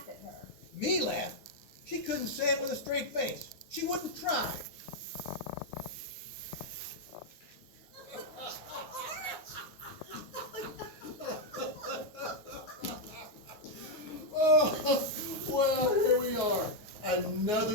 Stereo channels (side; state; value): right; late; 9.7 ms